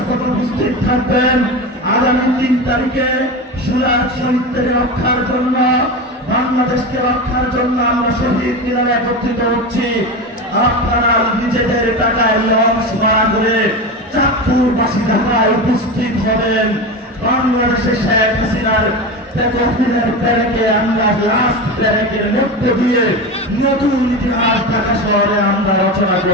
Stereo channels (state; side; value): normal; both; correlation 0.23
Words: উপস্থিত থাকবেন। আগামী 3 তারিখে সুরাজ শহীদদের রক্ষার জন্য, বাংলাদেশকে রক্ষার জন্য আমরা শহীদ মিনারে একত্রিত হচ্ছি। আপনারা নিজেদের টাকায় লঞ্চ ভাড়া করে চাঁদপুরবাসী ঢাকায় উপস্থিত হবেন। বাংলাদেশে শেখ হাসিনার প্যারেকে আমরা লাস্ট প্যারেকের মধ্য দিয়ে নতুন ইতিহাস ঢাকা শহরে আমরা রচনা